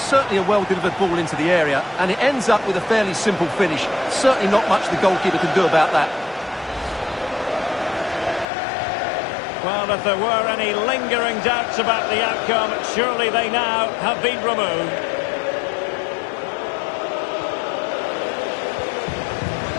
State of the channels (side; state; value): right; drops out; at 8.5 s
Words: certainly a well-delivered ball into the area, and it ends up with a fairly simple finish. Certainly not much the goalkeeper can do about that. Well, if there were any lingering doubts about the outcome, surely they now have been removed.